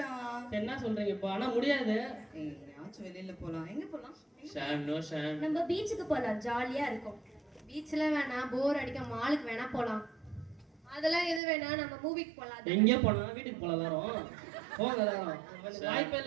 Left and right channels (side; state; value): left; drops out; at 11.4 s